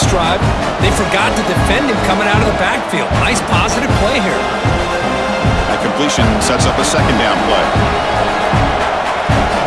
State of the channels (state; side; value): identical; both; correlation 1.00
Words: drive, they forgot to defend him coming out of the backfield. Nice positive play here. That completion sets up a second down play.